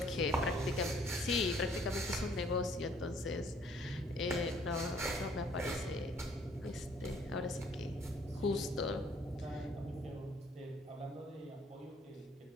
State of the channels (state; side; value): normal; both; correlation 0.60